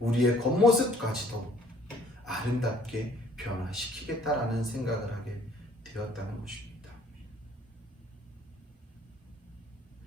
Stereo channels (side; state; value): both; normal; correlation 0.58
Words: 겉모습까지도 아름답게 변화시키겠다라는 생각을 하게 되었다는 것입니다.